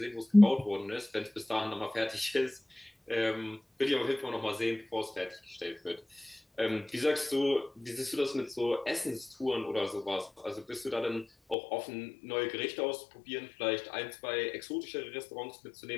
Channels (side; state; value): right; drops out; at 11.6 s